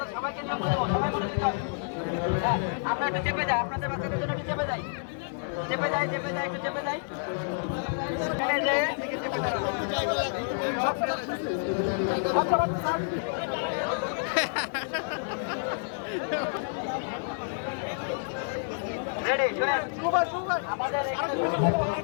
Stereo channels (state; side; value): silent; right; digital silence